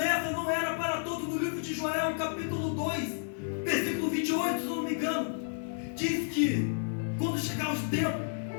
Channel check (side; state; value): right; silent; digital silence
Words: não era para todos. No livro de Joel, capítulo 2, versículo 28, se não me engano, diz que quando chegar os tempos,